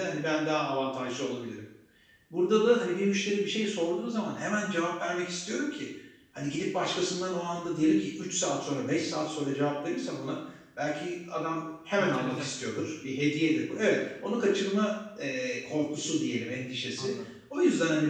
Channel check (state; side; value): identical; both; correlation 1.00